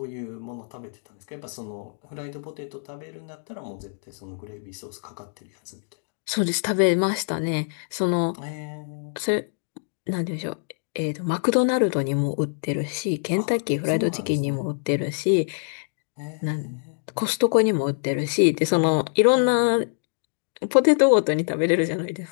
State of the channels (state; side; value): silent; right; 62 dB below the other